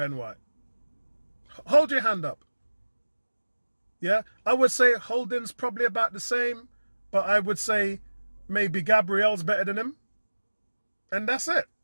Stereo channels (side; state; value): both; inverted; correlation -1.00